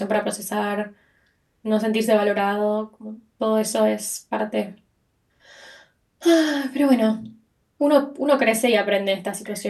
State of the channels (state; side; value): identical; both; correlation 1.00